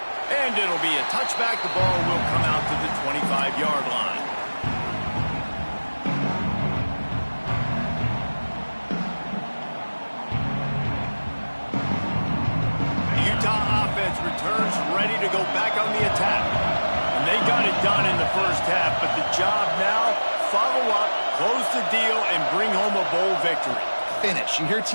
And it'll be a touchback. The ball will come out to the 25-yard line. The Utah offense returns ready to go back on the attack. And they got it done in the first half, but the job now, follow up, close the deal, and bring home a bowl victory. Finish. You hear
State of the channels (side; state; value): both; inverted; correlation -1.00